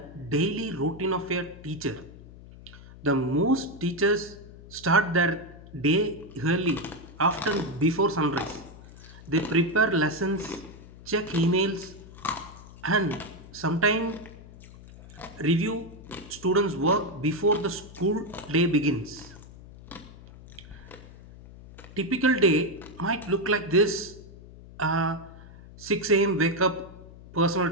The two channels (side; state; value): left; noise; hum, 18 dB below the sound